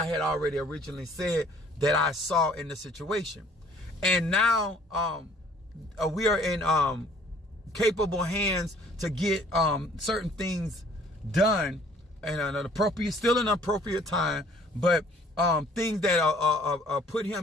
had already originally said that I saw in the situation. And now we are in capable hands to get certain things done in an appropriate time, but things that put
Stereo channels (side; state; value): both; normal; correlation 0.56